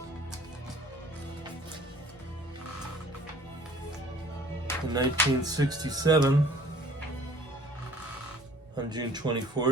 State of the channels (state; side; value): normal; both; correlation 0.52